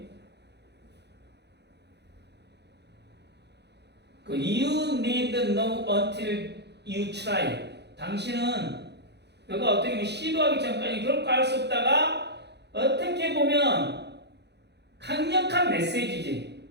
그 you need know until you try. 당신은 너가 어떻게 보면 시도하기 전까지 결코 알 수 없다가 어떻게 보면 강력한 메시지지.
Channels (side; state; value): left; late; 0.49 ms